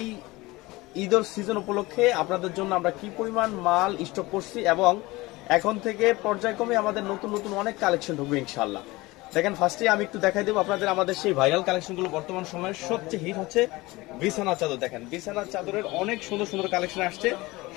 ঈদের সিজন উপলক্ষে আপনাদের জন্য আমরা কি পরিমাণ মাল স্টক করছি এবং এখন থেকে পর্যায়ক্রমে আমাদের নতুন নতুন অনেক কালেকশন ঢুকবে ইনশাআল্লাহ। দেখেন, ফার্স্টে আমি একটু দেখাই দেবো আপনাদের আমাদের সেই ভাইরাল কালেকশনগুলো। বর্তমান সময়ের সবচেয়ে হিট হচ্ছে বিছানার চাদর। দেখেন, বিছানার চাদরের অনেক সুন্দর সুন্দর কালেকশন আসছে।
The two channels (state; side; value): quieter; right; 21.1 dB